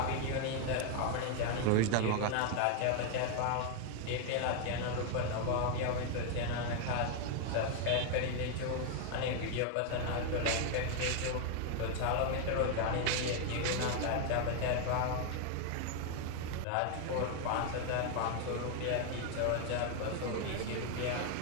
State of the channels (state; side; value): different; both; correlation 0.01